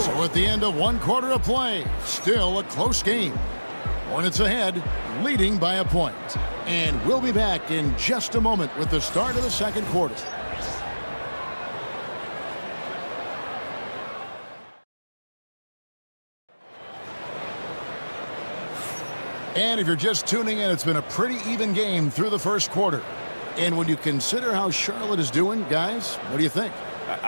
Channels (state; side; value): inverted; both; correlation -1.00